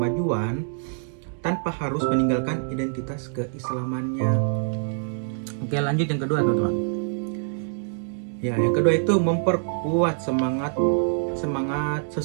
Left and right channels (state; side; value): silent; left; digital silence